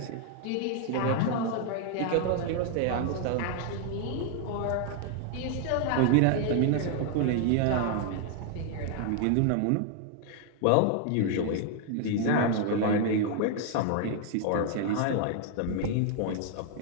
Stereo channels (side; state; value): both; different; correlation 0.00